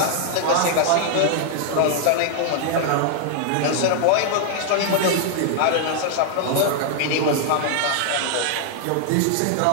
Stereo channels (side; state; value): both; different; correlation -0.01